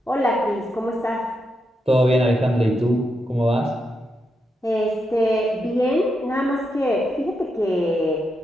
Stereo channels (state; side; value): normal; both; correlation 0.84